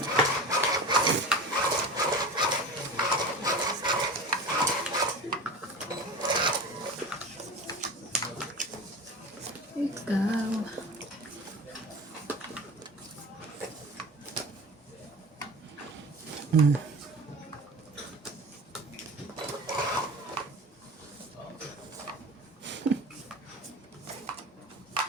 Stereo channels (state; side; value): normal; both; correlation 0.32